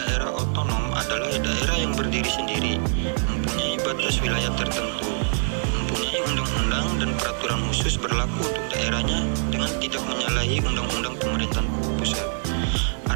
otonom adalah daerah yang berdiri sendiri, mempunyai batas wilayah tertentu, mempunyai undang-undang dan peraturan khusus berlaku untuk daerahnya dengan tidak menyalahi undang-undang pemerintahan pusat.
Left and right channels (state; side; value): silent; left; 57 dB below the other